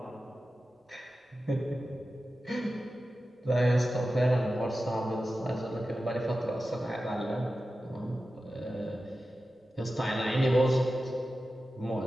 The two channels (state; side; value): normal; both; correlation 0.93